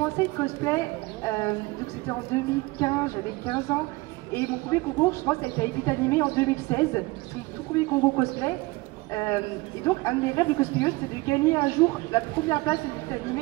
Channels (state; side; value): quieter; left; 22.7 dB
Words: le cosplay, donc c'était en 2015, j'avais 15 ans. Et mon premier concours, je pense, ça a été à Epitanim en 2016. C'est mon tout premier concours cosplay. Et donc, un de mes rêves de cosplayeuse, c'était de gagner un jour la première place à Epitanim.